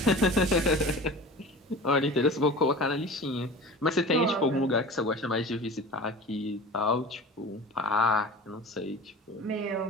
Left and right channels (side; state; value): both; normal; correlation 0.37